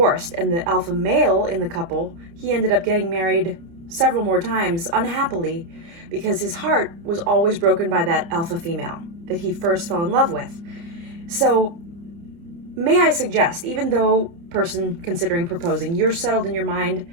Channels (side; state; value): left; late; 30 ms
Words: And the alpha male in the couple, he ended up getting married several more times unhappily because his heart was always broken by that alpha female that he first fell in love with. So may I suggest, even though person considering proposing, you're settled in your